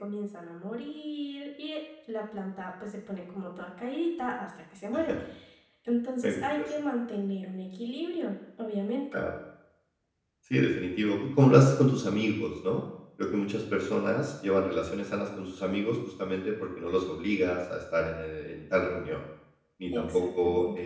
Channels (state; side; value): identical; both; correlation 1.00